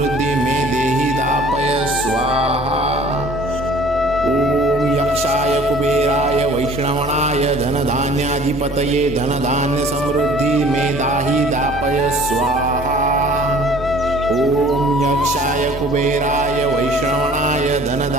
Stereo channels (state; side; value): normal; both; correlation 0.51